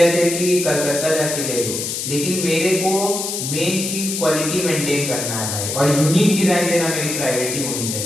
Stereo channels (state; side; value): noise; left; hiss, 4 dB below the sound